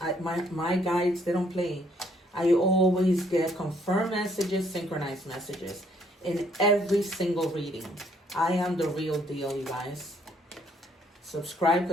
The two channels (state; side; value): normal; both; correlation 0.67